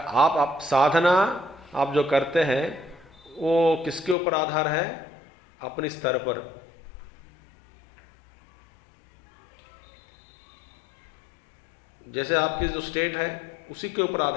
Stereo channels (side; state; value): right; drops out; at 4.2 s